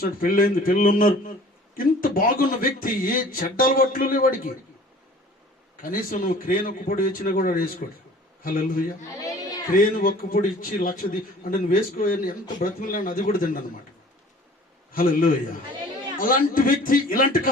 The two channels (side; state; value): both; normal; correlation 0.48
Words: పెళ్ళైంది, పిల్లలు ఉన్నారు. ఇంత బాగున్న వ్యక్తి ఏ చెడ్డ అలవాట్లు లేవు వాడికి. కనీసం నువ్వు క్రేన్ ఒక్కపొడి ఇచ్చినా కూడా వేసుకోడు. హల్లెలూయా. క్రేన్ ఒక్కపొడి ఇచ్చి అంటే నువ్వు వేసుకోని ఎంత బ్రతిమలాని అది కూడా తిండి అనమాట. హల్లెలూయా. అలాంటి వ్యక్తి ఇలాంటి